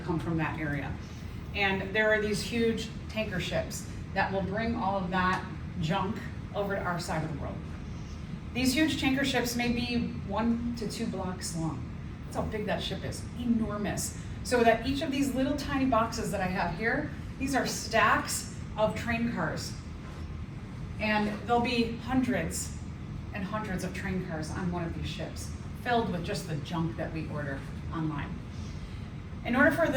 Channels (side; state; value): both; identical; correlation 1.00